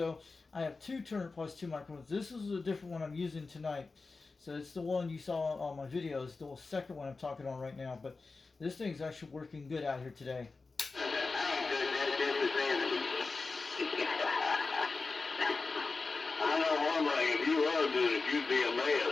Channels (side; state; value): right; quieter; 4.0 dB